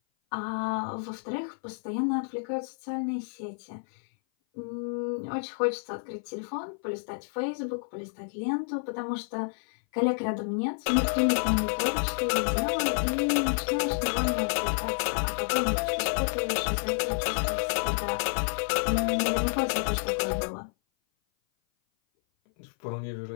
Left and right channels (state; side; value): silent; right; 56 dB below the other